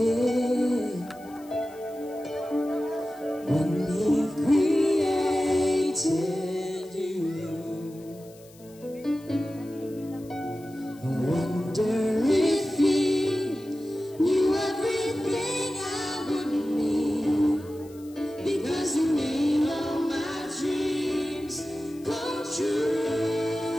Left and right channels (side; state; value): left; noise; hiss, 25 dB below the sound